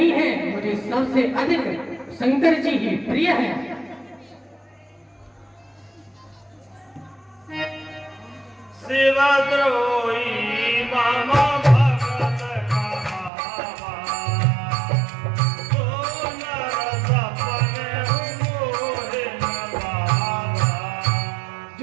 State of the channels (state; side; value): drops out; left; at 13.3 s